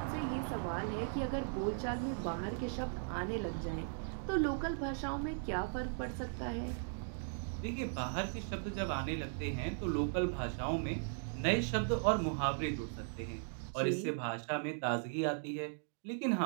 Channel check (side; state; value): left; silent; digital silence